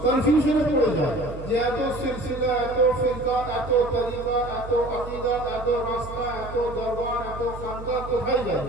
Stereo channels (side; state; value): right; noise; hum, 12 dB below the sound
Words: কনফিউশনে পড়ে যায় যে এত সিলসিলা, এত ফিরকা, এত তরিকা, এত আকীদা, এত রাস্তা, এত দরবার, এত খানকা, কোথায়